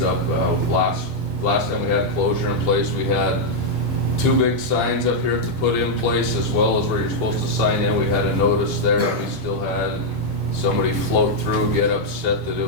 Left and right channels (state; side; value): normal; both; correlation -0.03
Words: up. Last time we had closure in place, we had 2 big signs up here to put in place, as well as where you're supposed to sign in. We had a notice there. We still had somebody float through, get upset that it